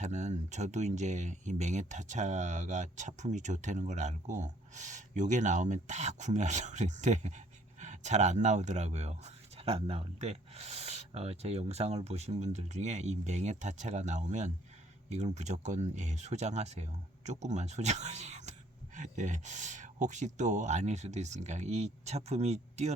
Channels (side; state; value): both; normal; correlation 0.61